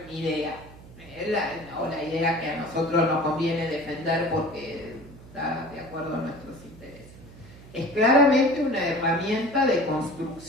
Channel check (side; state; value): right; noise; hum, 19 dB below the sound